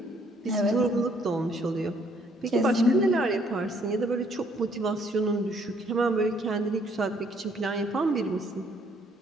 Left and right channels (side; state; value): both; normal; correlation 0.65